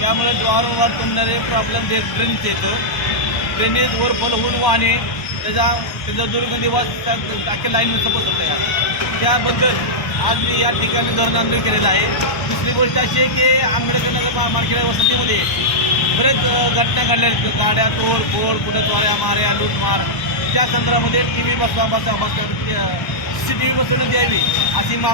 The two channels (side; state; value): right; late; 1.2 ms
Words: वारंवार तुंबणारे प्रॉब्लेम ते ड्रेनेजचे येतं. ड्रेनेज ओव्हरफ्लो होऊन वाहने त्याचा दुर्गंधी वास अख्ख्या लाईनचं बसवतं आहे. त्याबद्दल आज मी या ठिकाणी धरण आंदोलन केलेलं आहे. दुसरी गोष्ट अशी आहे की आंबेडकर नगर मार्केट वसतीमध्ये बरेच घटना घडल्या, गाड्या तोडफोड, कुठं चोऱ्या माऱ्या, लूटमार. त्या संदर्भामध्ये TV CCTV बसवण्यात यावी अशी